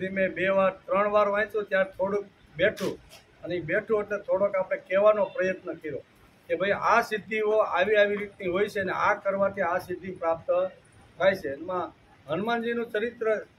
ધીમે 2 વાર 3 વાર વાંચ્યું ત્યારે થોડુંક બેઠું, અને એ બેઠું એટલે થોડોક આપણે કહેવાનો પ્રયત્ન કર્યો કે ભાઈ આ સિદ્ધિઓ આવી આવી રીતની હોય છે, ને આ કરવાથી આ સિદ્ધિ પ્રાપ્ત થાય છે. એમાં હનુમાનજીનું ચરિત્ર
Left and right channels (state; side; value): identical; both; correlation 1.00